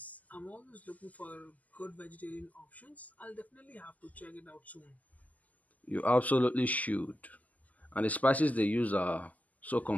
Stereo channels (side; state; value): right; late; 0.077 ms